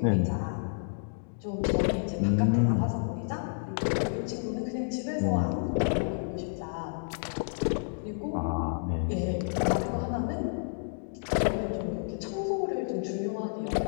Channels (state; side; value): silent; right; digital silence